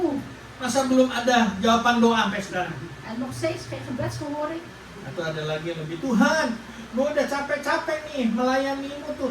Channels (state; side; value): identical; both; correlation 1.00